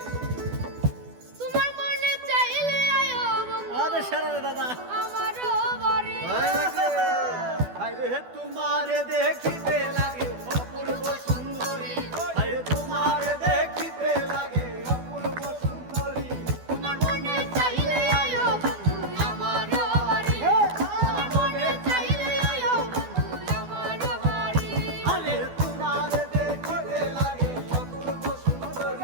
তোমার মনে চাইলে আয়ো বন্ধু আরে সারা দাদা আমারও বাড়ি। হায়রে তোমারে দেখিতে লাগে অপূর্ব সুন্দরী। হায়রে তোমারে দেখিতে লাগে অপূর্ব সুন্দরী। তোমার মনে চাইলে আয়ো বন্ধু আমারও বাড়ি। তোমার মনে চাইলে আয়ো বন্ধু আমারও বাড়ি। আরে তোমারে দেখিতে লাগে অপূর্ব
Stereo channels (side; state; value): left; late; 12 ms